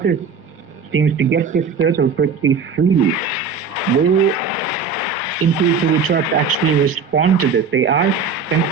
seems to get this turtle pretty freely. Will Intuitive We Trust actually respond to this? They are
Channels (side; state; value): left; quieter; 5.4 dB